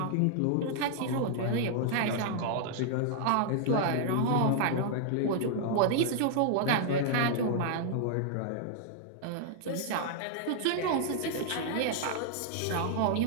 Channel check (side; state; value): both; different; correlation 0.00